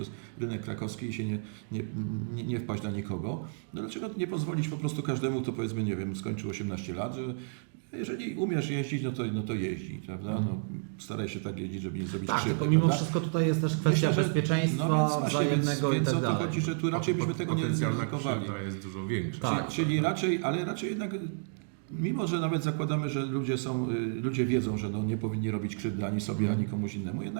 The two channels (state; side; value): silent; left; digital silence